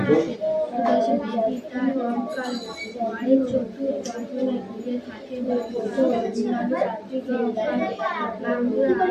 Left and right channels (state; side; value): identical; both; correlation 1.00